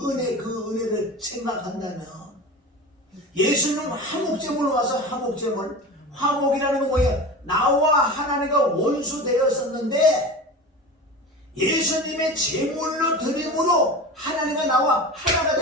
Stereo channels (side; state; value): both; normal; correlation 0.31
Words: 은혜를 생각한다면 예수님은 화목제물로 와서 화목제물, 화목이라는 건 뭐예요? 나와 하나님과 원수 되었었는데 예수님의 제물로 드림으로 하나님과 나와 하나가